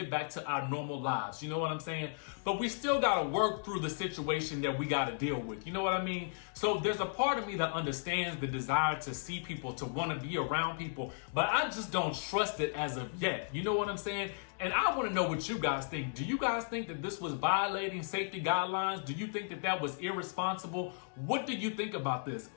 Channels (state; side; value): silent; right; digital silence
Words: back to our normal lives. You know what I'm saying? But we still got to work through the situation that we got to deal with. You know what I mean? So there's a part of me that understands the desire to see people, to want to be around people, but I just don't trust it as of yet. You know what I'm saying? And I want to know what you guys think. Do you guys think that this was violating safety guidelines? Do you think that that was irresponsible? What do you think about this?